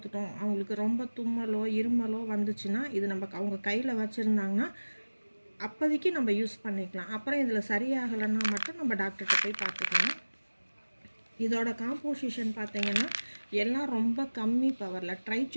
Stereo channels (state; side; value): inverted; both; correlation -1.00